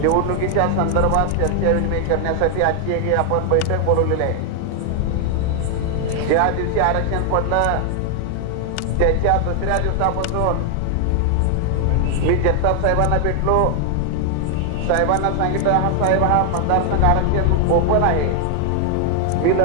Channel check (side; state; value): both; different; correlation 0.00